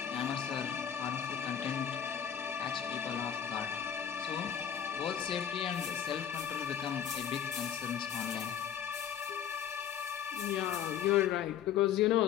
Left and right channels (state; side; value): quieter; right; 9.0 dB